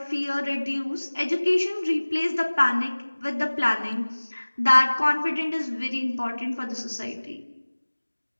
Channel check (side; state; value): both; inverted; correlation -1.00